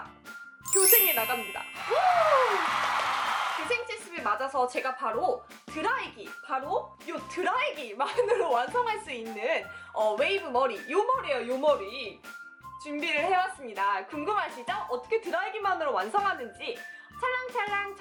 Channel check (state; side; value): identical; both; correlation 1.00